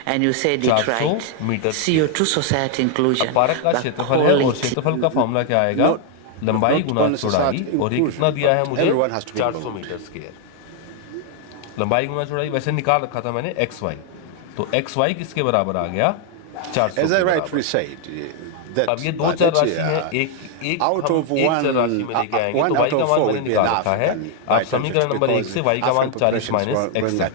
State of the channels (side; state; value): both; different; correlation 0.00